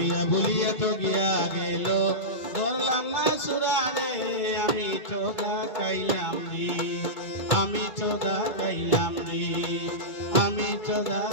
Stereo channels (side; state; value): right; late; 2.2 ms